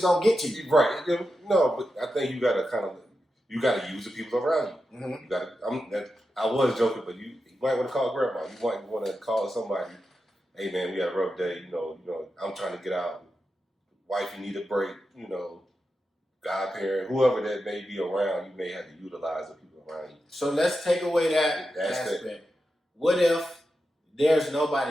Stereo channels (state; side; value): normal; both; correlation 0.89